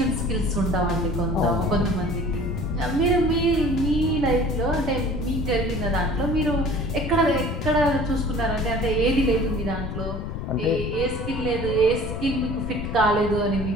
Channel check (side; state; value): left; noise; rumble, 5 dB below the sound